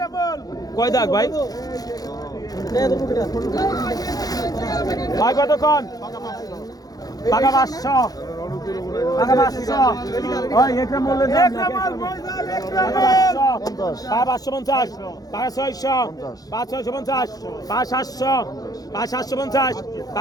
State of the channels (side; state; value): right; late; 0.18 ms